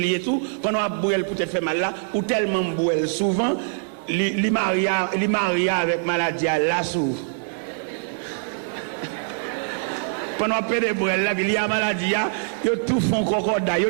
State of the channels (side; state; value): left; silent; digital silence